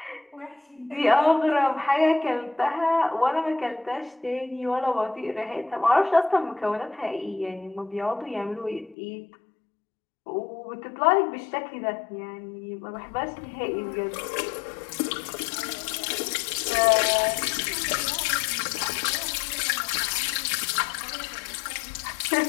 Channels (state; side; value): drops out; right; at 9.0 s